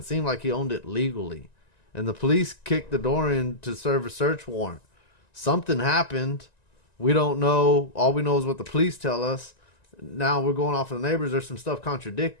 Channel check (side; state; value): right; late; 1.9 ms